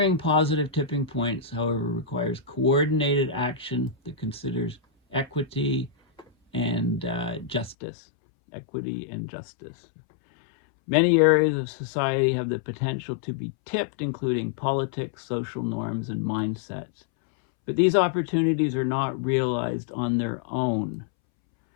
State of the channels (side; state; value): right; drops out; at 7.8 s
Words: positive tipping points, however, requires coordinated action that considers equity and justice. Equity and justice. Many areas of society have the potential to be tipped, including politics, social norms, and mindsets. But these opportunities are not realized on their own.